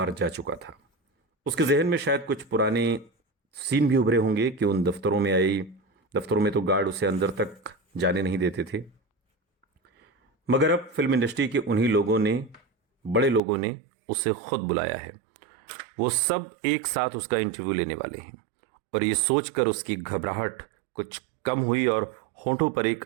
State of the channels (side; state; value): left; drops out; at 13.4 s